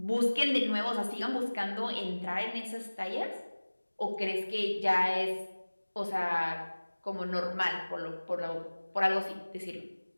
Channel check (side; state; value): both; inverted; correlation -1.00